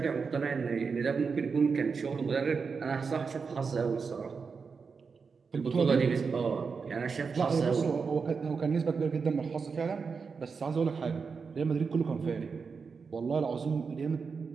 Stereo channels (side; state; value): left; quieter; 5.3 dB